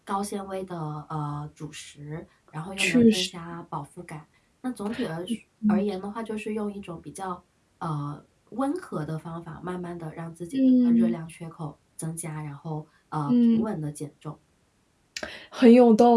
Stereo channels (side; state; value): both; identical; correlation 1.00